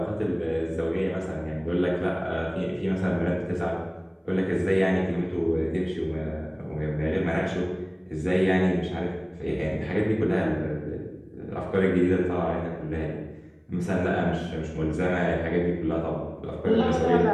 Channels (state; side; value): identical; both; correlation 1.00